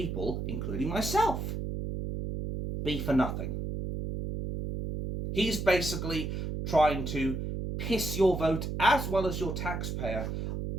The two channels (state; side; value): noise; right; hum, 4 dB below the sound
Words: including myself, be for nothing. He's basically trying to piss your vote as well as your taxpayer